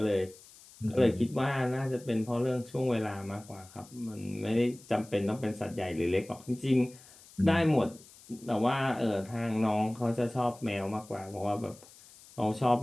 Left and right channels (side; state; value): left; noise; hiss, 22 dB below the sound